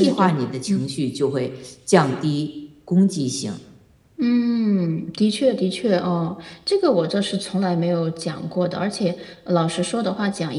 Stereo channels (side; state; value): both; identical; correlation 1.00